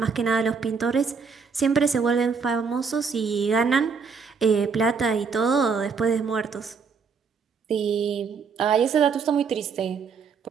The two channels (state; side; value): quieter; left; 5.6 dB